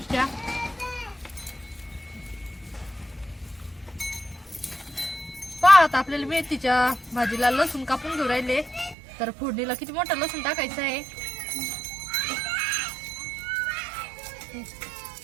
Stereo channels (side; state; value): left; drops out; at 9.0 s